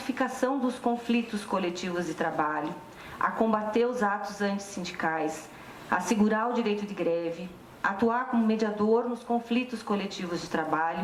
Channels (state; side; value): identical; both; correlation 1.00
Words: dos conflitos coletivos de trabalho, a combater os atos antissindicais, a assegurar o direito de greve, atuar como mediador nos conflitos coletivos de